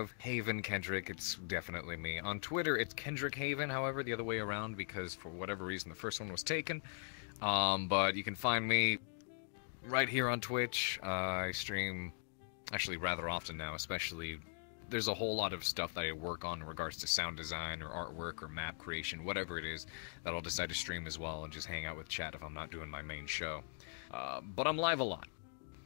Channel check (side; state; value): right; silent; digital silence